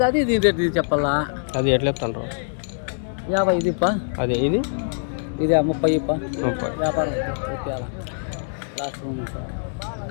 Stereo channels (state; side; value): silent; right; digital silence